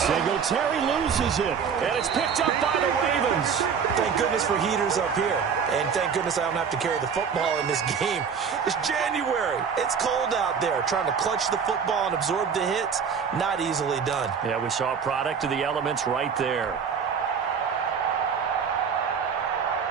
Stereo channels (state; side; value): quieter; left; 6.6 dB